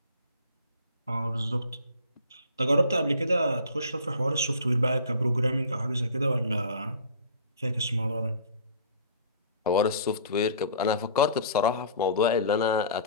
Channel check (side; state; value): both; inverted; correlation -0.45